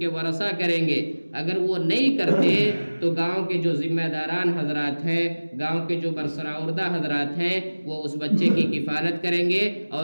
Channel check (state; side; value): inverted; both; correlation -1.00